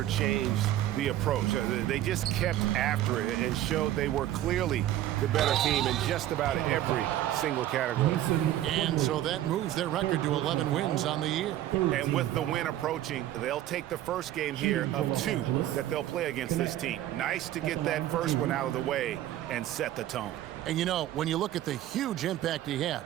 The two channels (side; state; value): left; quieter; 13.2 dB